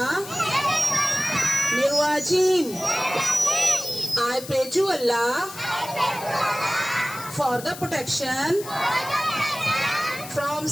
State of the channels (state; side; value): noise; left; hiss, 13 dB below the sound